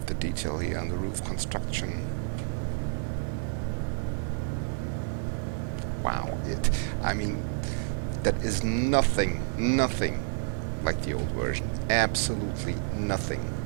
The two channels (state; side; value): silent; left; digital silence